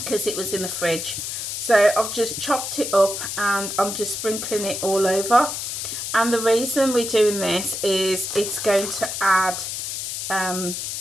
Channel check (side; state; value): left; noise; hiss, 4 dB below the sound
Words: it was in the fridge. So I've just chopped it up and I'm just sprinkling it all over. And the reason we're doing this is it's going to add